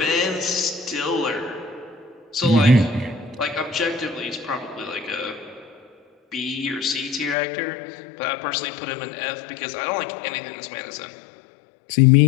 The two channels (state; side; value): drops out; right; at 7.4 s